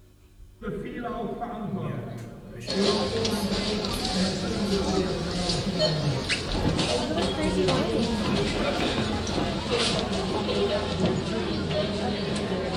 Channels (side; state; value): both; identical; correlation 1.00